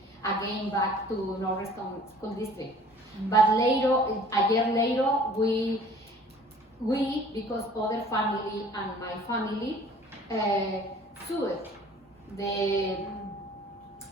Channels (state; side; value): normal; both; correlation 0.51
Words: again back to Norristown School District. But later, a year later, we because other family and my family sued the